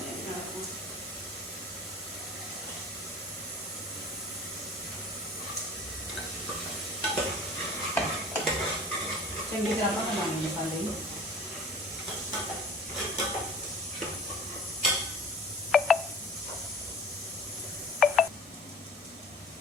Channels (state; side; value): normal; both; correlation 0.44